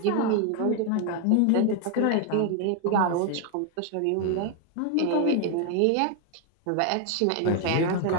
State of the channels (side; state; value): both; different; correlation 0.01